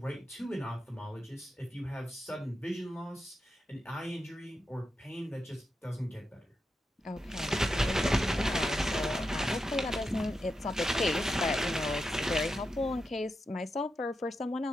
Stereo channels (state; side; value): normal; both; correlation 0.87